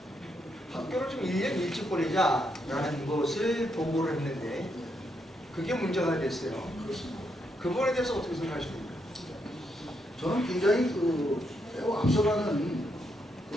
학교를 좀 1년 일찍 보내자라는 것을 보고를 했는데 그게 문제가 됐어요. 그렇습니다. 그 부분에 대해서 어떻게 생각하십니까? 저는 굉장히 매우 앞서가는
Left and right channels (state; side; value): normal; both; correlation 0.79